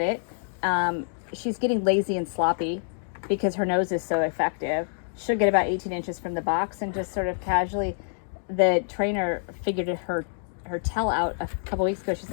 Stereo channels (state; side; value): silent; right; digital silence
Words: She's getting lazy and sloppy because her nose is so effective. She'll get about 18 inches from the box and just sort of casually, the trainer figured her tail out a couple weeks ago. She's